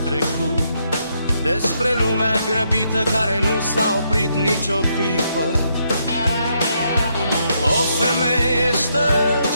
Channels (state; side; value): inverted; both; correlation -0.77